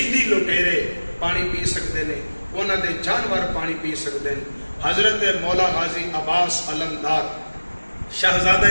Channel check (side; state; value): both; inverted; correlation -1.00